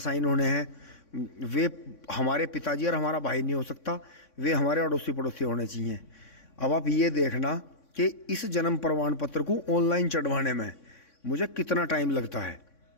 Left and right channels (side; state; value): right; late; 3.6 ms